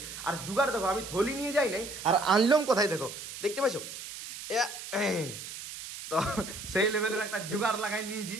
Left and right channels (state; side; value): noise; right; hiss, 10 dB below the sound